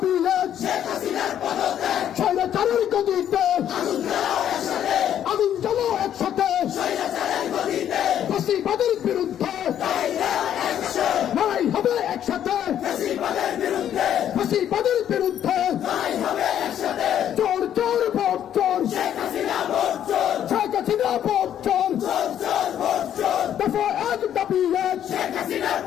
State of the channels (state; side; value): quieter; right; 10.2 dB